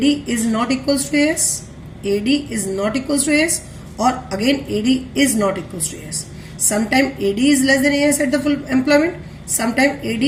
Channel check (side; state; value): both; identical; correlation 1.00